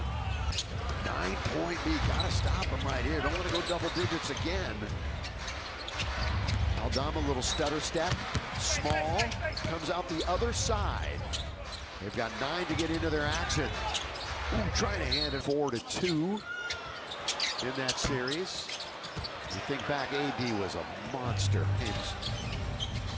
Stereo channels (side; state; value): both; identical; correlation 1.00